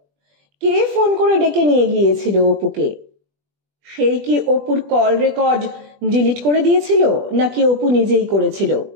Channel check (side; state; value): left; late; 20 ms